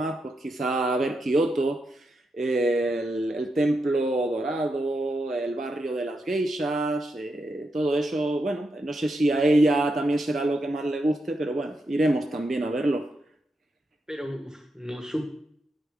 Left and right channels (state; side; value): normal; both; correlation 0.84